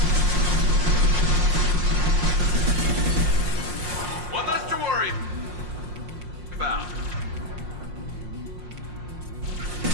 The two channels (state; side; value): late; left; 5.6 ms